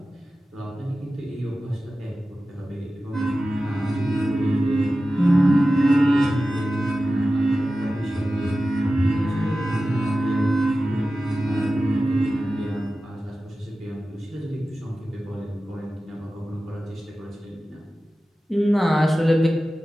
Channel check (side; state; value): both; normal; correlation 0.94